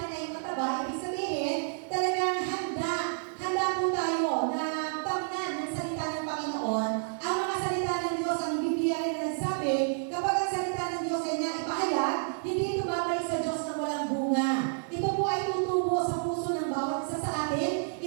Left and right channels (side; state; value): left; silent; digital silence